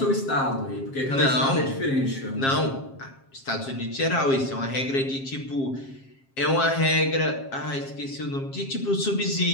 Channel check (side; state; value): right; late; 7.4 ms